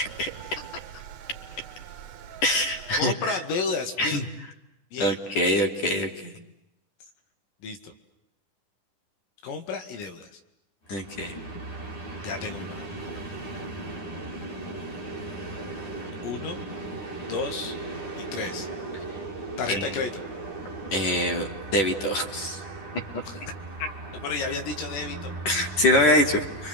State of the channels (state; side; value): late; right; 10 ms